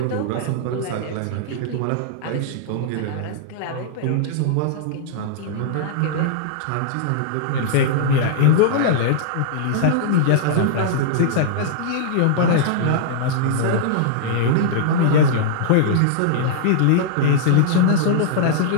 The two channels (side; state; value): both; different; correlation -0.01